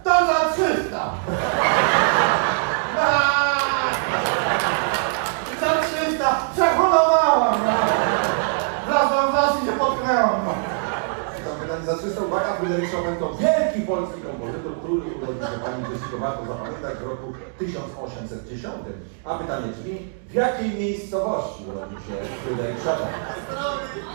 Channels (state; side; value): silent; left; digital silence